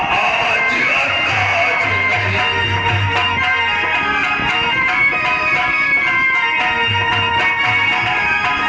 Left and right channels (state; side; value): identical; both; correlation 1.00